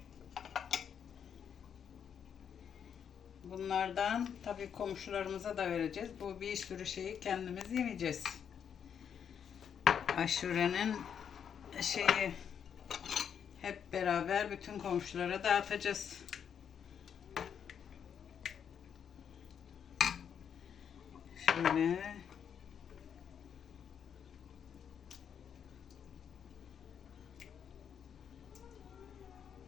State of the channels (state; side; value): quieter; right; 7.9 dB